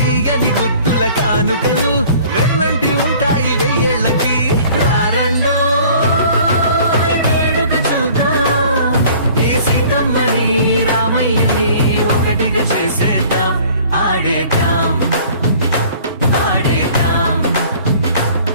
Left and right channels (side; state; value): both; inverted; correlation -0.51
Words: గుట్టుల కానుకలు వెన్నంటి ఉంటాయి వెయ్యేళ్ళకి. రారండో వేడుక చూద్దాం ఈ సీతమ్మని రామయ్యని ఒకటిగా చేసేద్దాం. ఆడేద్దాం ఆడేద్దాం